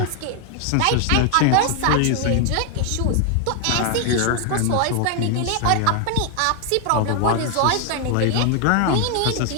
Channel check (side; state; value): both; different; correlation 0.00